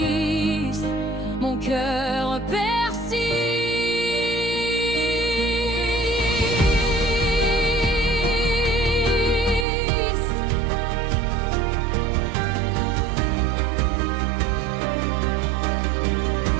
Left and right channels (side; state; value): left; drops out; at 9.7 s